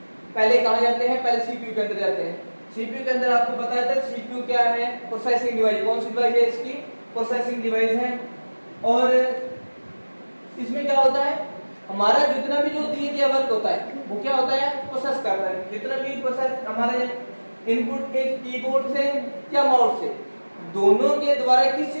पहले कहाँ जाते हैं, पहले सीपीयू के अंदर जाते हैं। सीपीयू के अंदर आपको बताया था सीपीयू क्या है, प्रोसेसिंग डिवाइस। कौन सी डिवाइस है इसकी, प्रोसेसिंग डिवाइस है। और इसमें क्या होता है, हमारा जितना भी जो दिए गया वर्क होता है वो क्या होता है, प्रोसेस करता है। जितना भी प्रोसेस हमारे इनपुट के कीबोर्ड से या माउस से, दोनों के द्वारा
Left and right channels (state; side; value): inverted; both; correlation -1.00